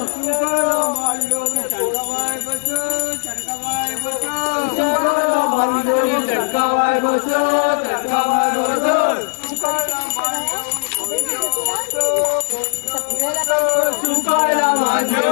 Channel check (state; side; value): silent; right; 66 dB below the other